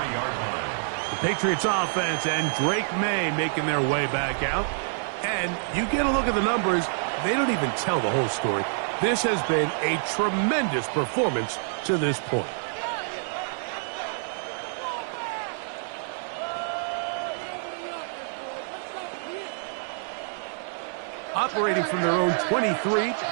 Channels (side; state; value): left; silent; 60 dB below the other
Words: The Patriots offense and Drake May making their way back out. And you get a look at the numbers, they don't even tell the whole story. This has been a tremendous performance to this point. Operating from their own 23,